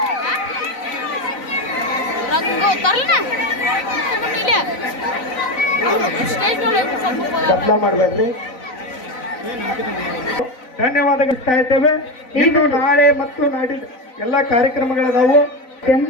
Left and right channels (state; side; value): late; right; 4.0 ms